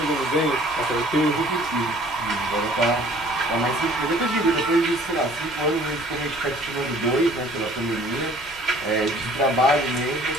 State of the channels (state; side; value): normal; both; correlation 0.54